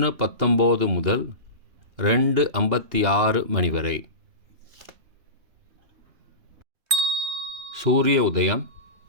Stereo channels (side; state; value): left; late; 3.2 ms